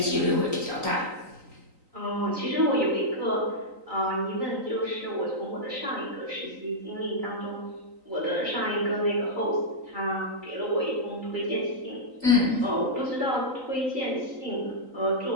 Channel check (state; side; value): late; left; 3.9 ms